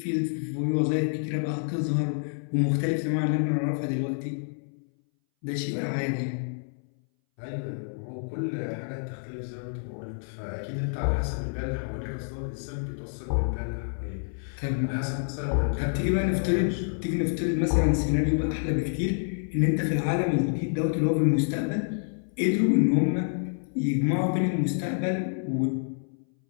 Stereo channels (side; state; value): right; silent; 59 dB below the other